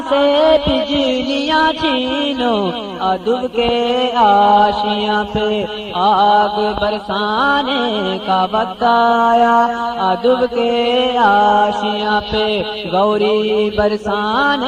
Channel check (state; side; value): identical; both; correlation 1.00